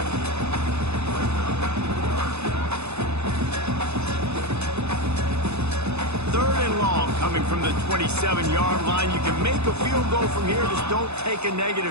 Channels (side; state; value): left; late; 0.80 ms